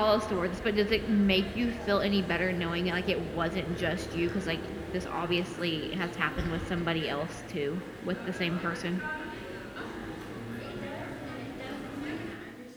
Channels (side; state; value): both; identical; correlation 1.00